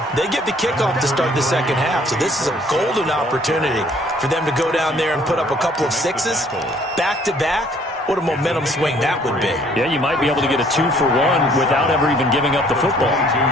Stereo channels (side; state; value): both; normal; correlation 0.60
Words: they get the kickoff to start the second half, so this is a golden opportunity for them to go down there and put up a couple of 6s back-to-back. What a momentum swing that would be. Yeah, you might be able to get a 2-for-1 without ever even giving up the football.